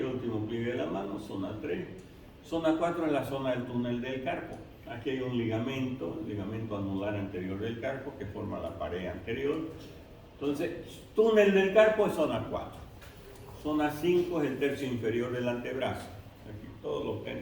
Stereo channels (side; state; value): both; identical; correlation 1.00